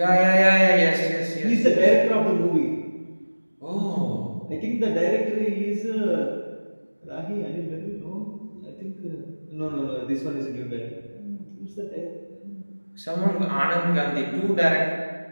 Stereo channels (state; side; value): inverted; both; correlation -1.00